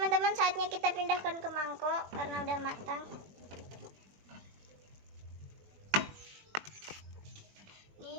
saatnya kita pindahkan ke mangkok karena udah matang.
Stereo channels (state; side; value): late; left; 21 ms